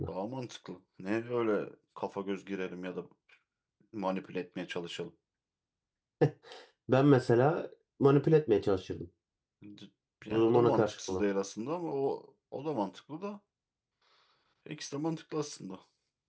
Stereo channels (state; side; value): identical; both; correlation 1.00